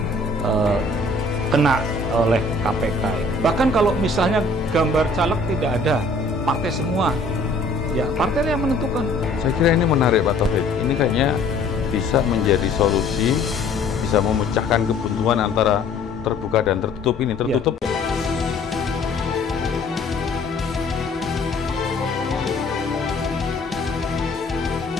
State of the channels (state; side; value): quieter; right; 3.1 dB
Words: kena oleh KPK. Bahkan kalau misalnya gambar caleg tidak ada, partai semua, ya partai yang menentukan. Saya kira ini menarik Pak Taufik. Ini kayaknya bisa menjadi solusi, bisa memecahkan kebuntuan antara terbuka dan tertutup ini. Tertutup. Ya.